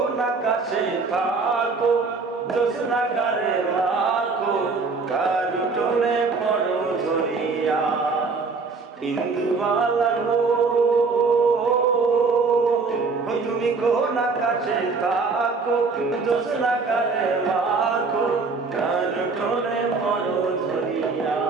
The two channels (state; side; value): quieter; left; 4.3 dB